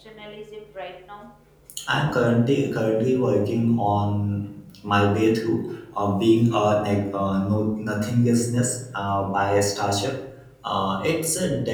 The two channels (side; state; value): both; identical; correlation 1.00